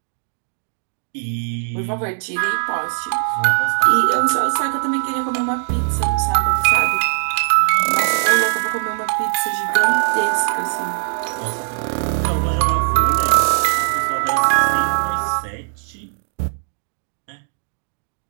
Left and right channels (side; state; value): left; silent; 65 dB below the other